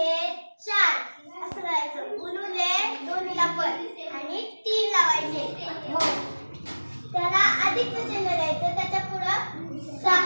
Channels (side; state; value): both; inverted; correlation -1.00